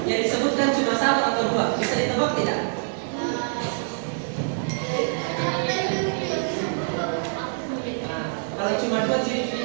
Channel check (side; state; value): left; silent; 61 dB below the other